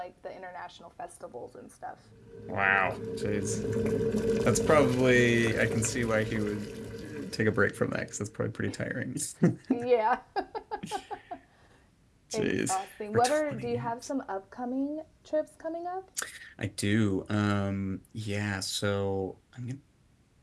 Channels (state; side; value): identical; both; correlation 1.00